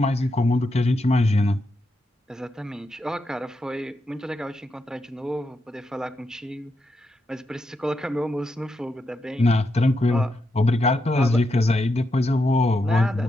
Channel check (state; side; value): normal; both; correlation 0.83